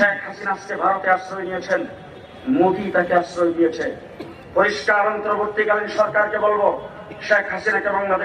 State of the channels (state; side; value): identical; both; correlation 1.00